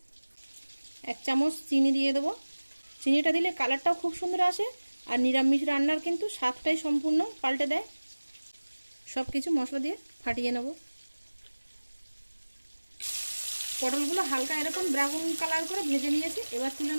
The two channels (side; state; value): both; inverted; correlation -1.00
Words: 1 চামচ চিনি দিয়ে দেবো। চিনিটা দিলে কালারটাও খুব সুন্দর আসে আর নিরামিষ রান্নার কিন্তু স্বাদটাই সম্পূর্ণ পাল্টে দেয়। সব কিছু মশলা দিয়ে ফাটিয়ে নেব। পটলগুলো হালকা এরকম ব্রাউন কালার করে ভেজে নিয়েছি, এবার তুলে